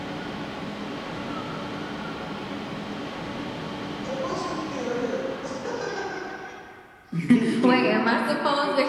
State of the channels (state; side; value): identical; both; correlation 1.00